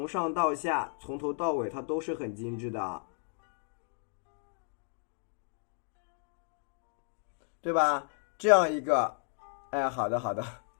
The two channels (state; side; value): silent; right; 55 dB below the other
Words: 上到下，从头到尾它都是很精致的，对吧？这样一个，哎，好的，